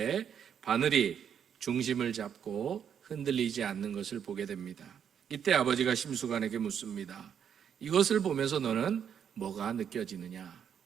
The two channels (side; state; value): left; quieter; 8.2 dB